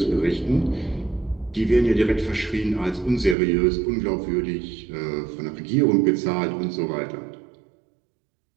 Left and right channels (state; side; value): drops out; left; at 3.4 s